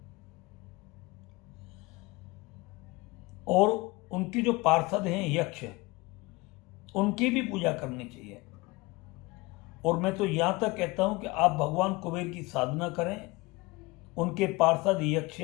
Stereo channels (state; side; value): quieter; right; 23.2 dB